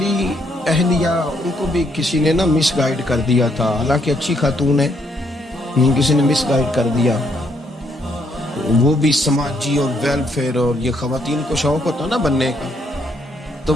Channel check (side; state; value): both; normal; correlation 0.72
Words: اہلیہ، ان کو بھی کسی نے نا مس گائیڈ کر دیا تھا، حالانکہ اچھی خاتون ہے، کسی نے مس گائیڈ کر دیا. وہ بھی سماجی اور ویلفیئر، اور یہ خواتین کو شوق ہوتا نا بننے کا، تو